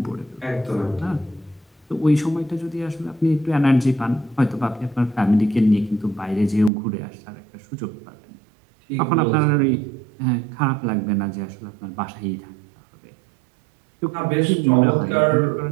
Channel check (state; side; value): drops out; left; at 6.7 s